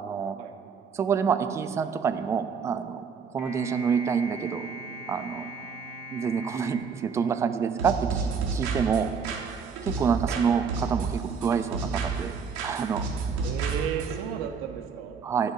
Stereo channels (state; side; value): quieter; left; 6.0 dB